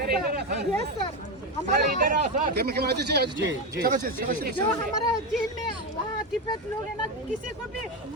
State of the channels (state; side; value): normal; both; correlation 0.13